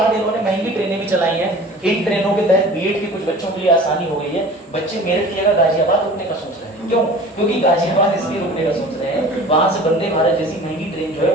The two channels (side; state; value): both; normal; correlation 0.42